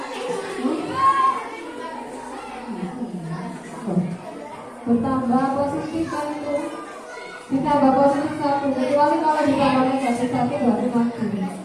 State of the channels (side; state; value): both; identical; correlation 1.00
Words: Bertambah positif kan itu, ditambah positif 1, kecuali kalau ditambah negatif 1 berarti mati.